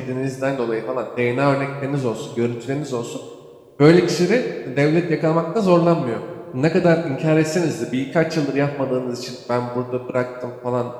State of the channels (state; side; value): identical; both; correlation 1.00